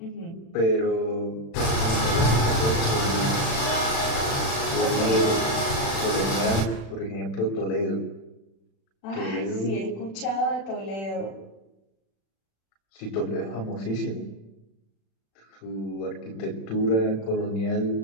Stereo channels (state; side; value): late; right; 36 ms